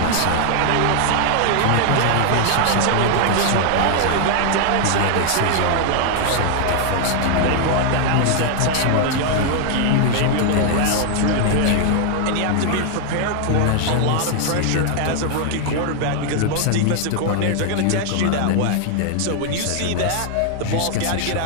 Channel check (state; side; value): different; both; correlation 0.00